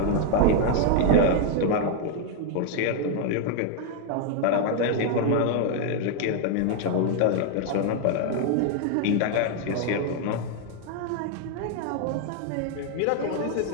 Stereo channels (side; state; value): both; different; correlation 0.00